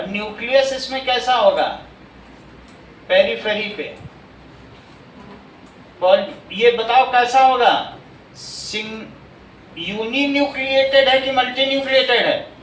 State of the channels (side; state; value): both; identical; correlation 1.00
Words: न्यूक्लियस इसमें कैसा होगा? पेरिफेरी पे। और ये बताओ कैसा होगा? यूनिन्यूक्लिएटेड है कि मल्टीन्यूक्लिएटेड है?